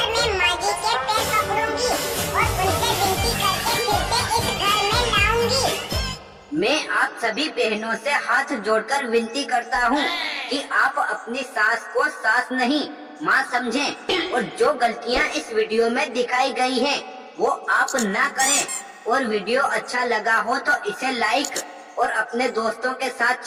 मैं माँ जी के पैर पकड़ूंगी और उनसे विनती करके फिर से इस घर में लाऊंगी। मैं आप सभी बहनों से हाथ जोड़कर विनती करता हूँ कि आप अपनी सास को सास नहीं माँ समझें और जो गलतियाँ इस वीडियो में दिखाई गई हैं वो आप ना करें। और वीडियो अच्छा लगा हो तो इसे लाइक और अपने दोस्तों के साथ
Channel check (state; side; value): identical; both; correlation 1.00